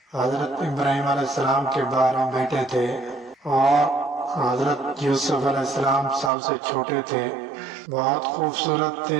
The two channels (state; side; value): drops out; left; at 6.3 s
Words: حضرت ابراہیم علیہ السلام کے 12 بیٹے تھے، اور حضرت یوسف علیہ السلام سب سے چھوٹے تھے۔ بہت خوبصورت